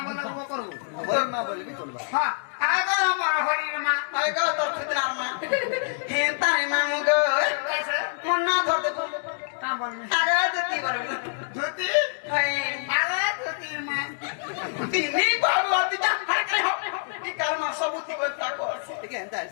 বলে ও করব বল মা বলবি চলবা হ্যাঁ আগো আমার হরির মা হায় গো তোর ফিতনার মা হেতা রে মাম গো কাছে মন না ধরতে তা বলবি আগে দিতি বলবো জ্যোতি হায় আগো জ্যোতির মা তিনি বাবু আতি যা হাইতে হো কি কারমা সবুতি করতা কো ঠিক আছে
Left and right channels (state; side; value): silent; right; digital silence